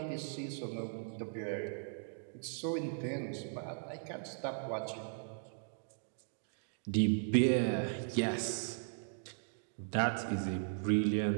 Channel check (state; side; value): silent; left; digital silence